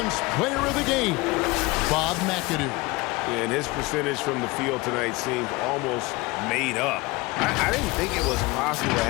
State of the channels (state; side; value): quieter; right; 23.2 dB